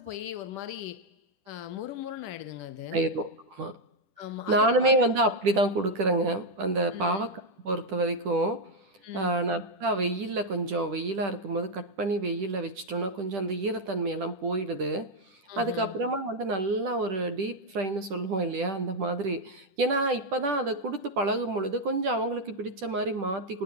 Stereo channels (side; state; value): left; late; 10 ms